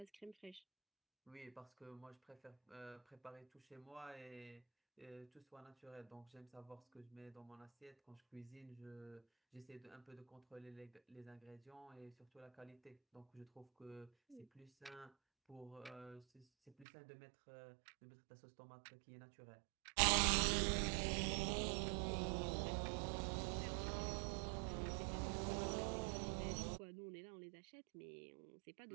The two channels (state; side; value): drops out; left; at 16.9 s